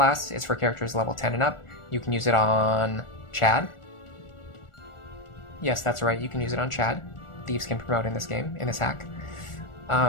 It's for characters level 10 and up. You can use it on Chad. Yes, that's right, you can use it on Chad. Thieves can promote in this game, in this hack.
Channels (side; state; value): right; late; 1.4 ms